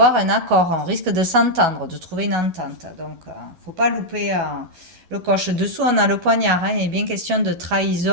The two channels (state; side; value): late; left; 11 ms